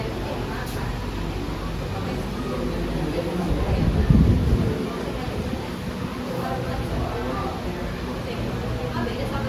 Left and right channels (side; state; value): both; identical; correlation 1.00